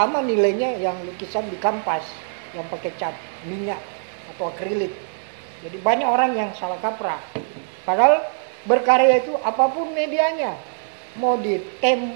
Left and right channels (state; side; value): silent; left; digital silence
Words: nilainya yang lukisan di kanvas yang pakai cat minyak atau akrilik. Jadi banyak orang yang salah kaprah. Padahal berkarya itu apapun medianya, mau di